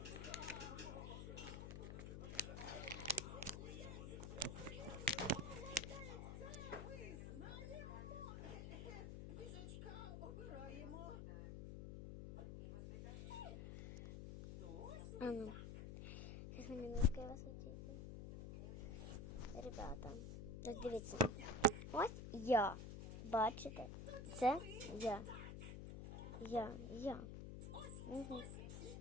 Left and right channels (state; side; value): noise; left; hum, 7 dB below the sound